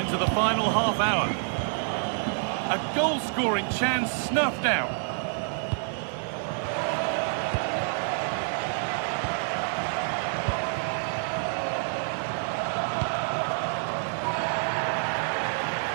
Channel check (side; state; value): left; silent; 60 dB below the other